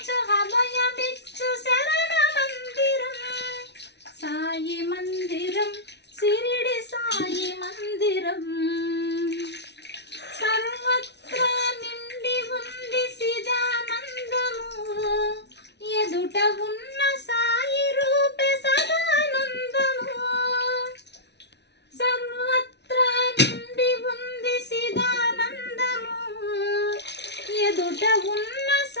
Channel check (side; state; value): right; late; 0.50 ms